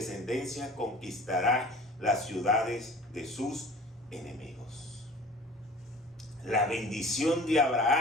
conquistará las ciudades de sus enemigos. La bendición de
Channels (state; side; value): normal; both; correlation 0.44